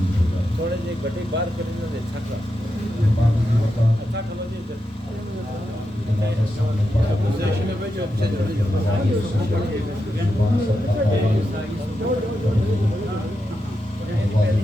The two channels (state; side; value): normal; both; correlation 0.87